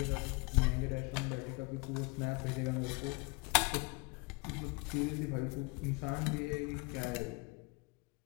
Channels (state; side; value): quieter; right; 29.4 dB